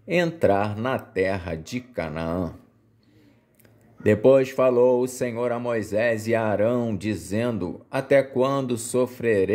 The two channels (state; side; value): identical; both; correlation 1.00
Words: entrar na terra de Canaã. Depois falou o Senhor a Moisés e a Arão, dizendo: até quando